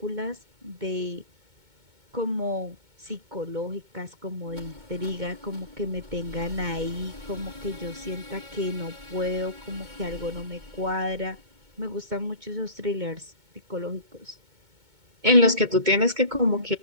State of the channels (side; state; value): left; late; 2.2 ms